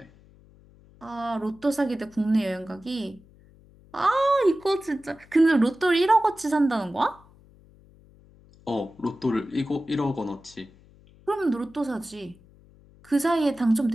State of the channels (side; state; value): left; noise; hum, 26 dB below the sound